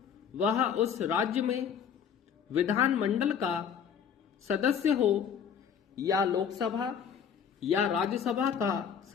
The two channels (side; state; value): right; quieter; 7.7 dB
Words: वह उस राज्य में विधानमंडल का सदस्य हो या लोकसभा या राज्यसभा का